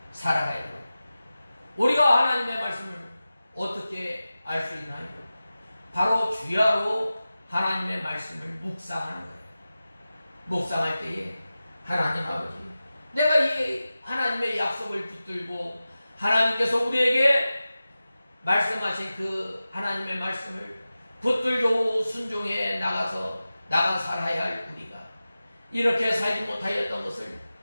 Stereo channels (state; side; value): inverted; both; correlation -0.95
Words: 살아가야 돼요. 우리가 하나님의 말씀을 어떻게 알 수 있나요? 바로 주야로 하나님의 말씀을 묵상하는 거예요. 묵상할 때에 하나님 아버지, 내가 이 하나님의 약속을 붙들고 하나님께서 우리에게 말씀하신 그 하나님의 말씀을 붙들고 순종해 나가 살아야 할 우리가 이렇게 살지 못하였던 것을